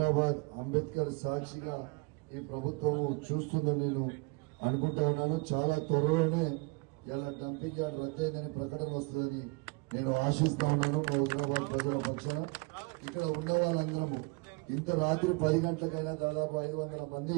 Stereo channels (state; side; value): quieter; left; 29.7 dB